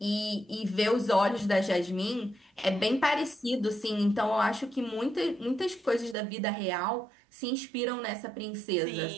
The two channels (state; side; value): drops out; left; at 6.2 s